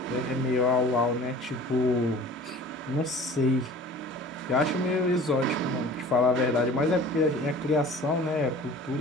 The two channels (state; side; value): normal; both; correlation 0.44